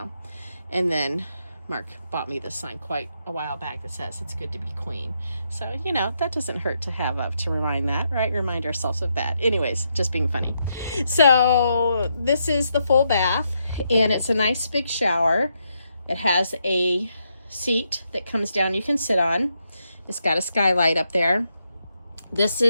And then Mark bought me this sign quite a while back that says it's good to be queen. So, that doesn't hurt to have up to remind that, right? Remind ourselves of that. Anyways, just being funny. So this is the full bath, and it's a nice big shower. It has a seat that comes down you can sit on. It's got a skylight up there. This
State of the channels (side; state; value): both; inverted; correlation -0.80